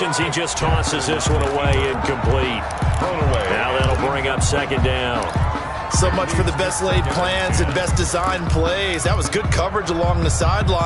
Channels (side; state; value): both; identical; correlation 1.00